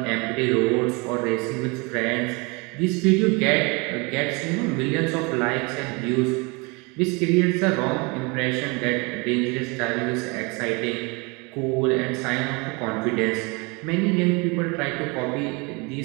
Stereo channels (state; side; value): quieter; left; 28.9 dB